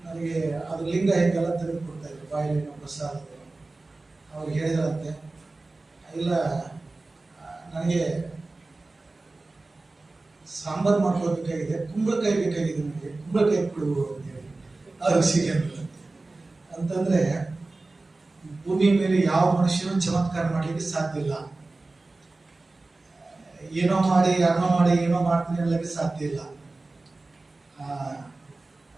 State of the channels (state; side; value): quieter; left; 3.3 dB